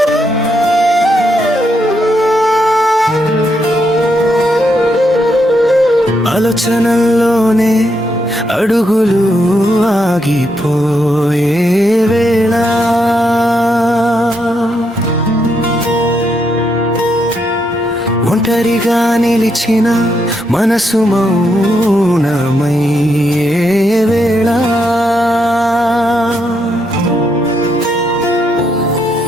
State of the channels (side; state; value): both; normal; correlation 0.79